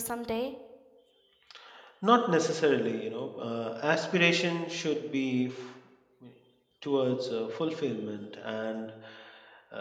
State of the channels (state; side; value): identical; both; correlation 1.00